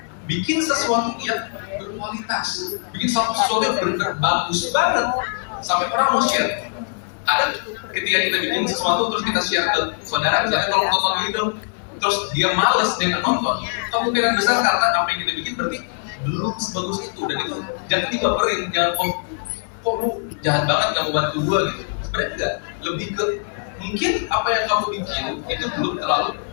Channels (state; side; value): silent; right; 64 dB below the other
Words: Bikin sesuatu yang berkualitas, bikin sesuatu yang benar-benar bagus banget sampai orang mau share. Ada ketika kita bikin sesuatu terus kita share ke saudara, misalnya tolong tonton ini dong, terus dia males dengan nonton, kemungkinan besar karena apa yang kita bikin berarti belum sebagus itu. Dan itu jangan dibaperin, jangan kok lu jahat banget kamu bantu gua gitu. Sebenarnya enggak, lebih ke mungkin apa yang kamu bikin itu belum terlalu